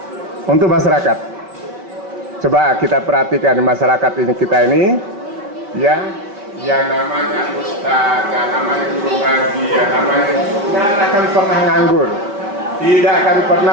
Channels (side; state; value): left; late; 4.9 ms